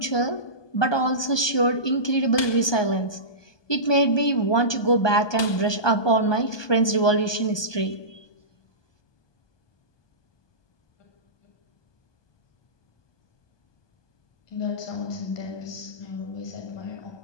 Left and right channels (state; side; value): late; right; 1.2 ms